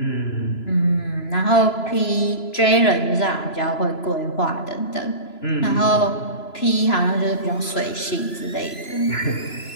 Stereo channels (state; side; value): late; right; 3.0 ms